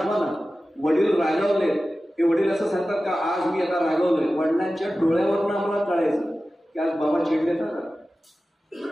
ना, वडील रागावले, हे वडील असं सांगतात का आज मी आता रागावलोय, वडिलांच्या डोळ्यावरून आम्हाला कळायचं की आज बाबा चिडले का,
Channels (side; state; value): both; normal; correlation 0.95